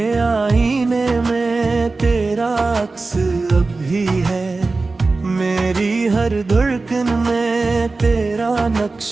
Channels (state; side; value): quieter; left; 3.7 dB